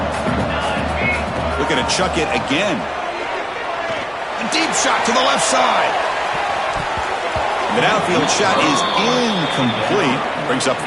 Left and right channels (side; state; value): both; identical; correlation 1.00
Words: Looking to chuck it again. A deep shot to the left side. The downfield shot is incomplete. Brings up